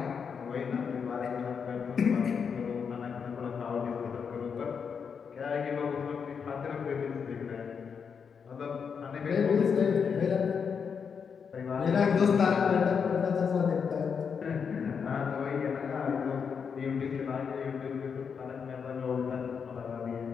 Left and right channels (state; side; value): quieter; right; 6.4 dB